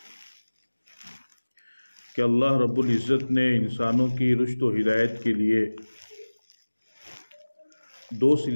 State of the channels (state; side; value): inverted; both; correlation -1.00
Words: کہ اللہ رب العزت نے انسانوں کی رشد و ہدایت کے لیے دو